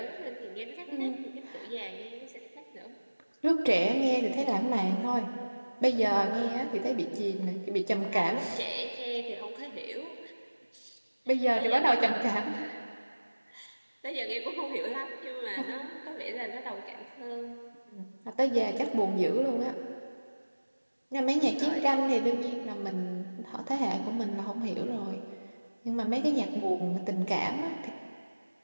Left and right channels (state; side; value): inverted; both; correlation -1.00